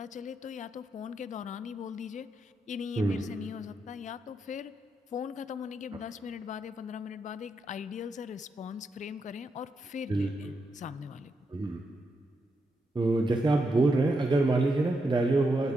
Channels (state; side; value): normal; both; correlation 0.83